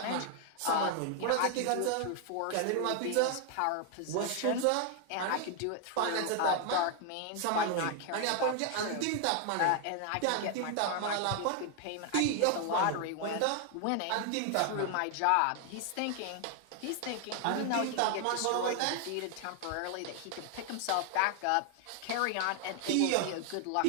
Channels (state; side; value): different; both; correlation 0.00